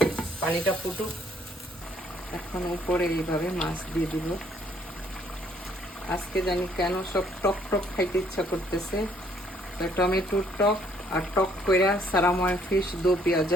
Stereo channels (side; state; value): both; normal; correlation 0.65